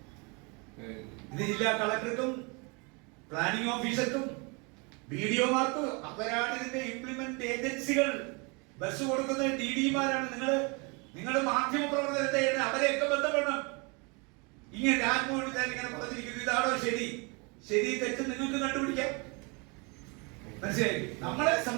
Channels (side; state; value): left; quieter; 30.8 dB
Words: ഇത് ജില്ലാ കളക്ടർക്കും പ്ലാനിംഗ് ഓഫീസർക്കും BDO-മാർക്കും അവരാണ് ഇതിന്റെ ഇംപ്ലിമെന്റ് ഏജൻസികൾ. ബസ് കൊടുക്കുന്ന DD-മാരാണ്. നിങ്ങൾ മാധ്യമ പ്രവർത്തനത്തെ അവരെയൊക്കെ ബന്ധപ്പെടണം. ഇങ്ങനെ രാജ്മോഹൻ ഉണ്ണിത്താൻ ഇങ്ങനെ പറഞ്ഞിരിക്കുന്നു. ഇതാണോ ശരി തെറ്റ് നിങ്ങൾക്ക് കണ്ടുപിടിക്കാം. മനസ്സിലായി? നമ്മളെ